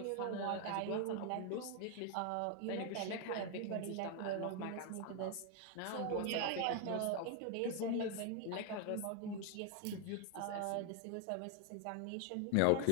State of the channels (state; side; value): different; both; correlation 0.00